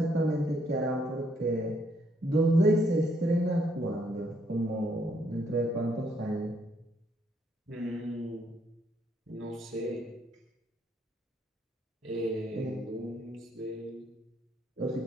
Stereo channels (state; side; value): normal; both; correlation 0.71